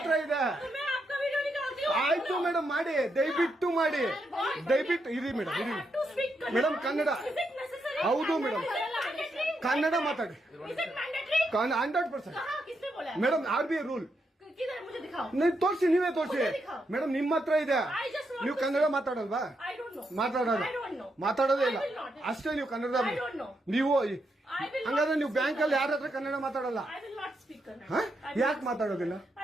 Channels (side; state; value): both; normal; correlation 0.81